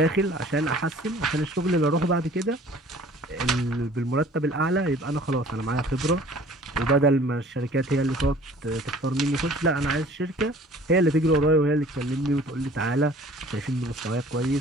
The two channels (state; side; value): normal; both; correlation 0.50